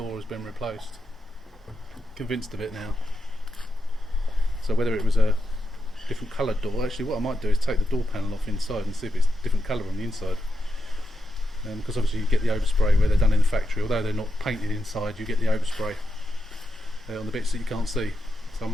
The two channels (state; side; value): normal; both; correlation 0.87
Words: has been replaced. Convinced of it now. So whether it was a different coloured door, actually what I might do is take the door panel off inside and see if it's different colour on the inside. Because obviously you get the overspray where they're done in the factory, although they're not painted inside, you get the overspray on the bits that you can't see. So I